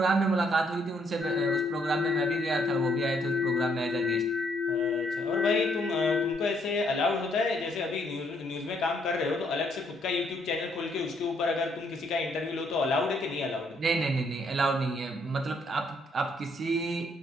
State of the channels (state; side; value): normal; both; correlation 0.70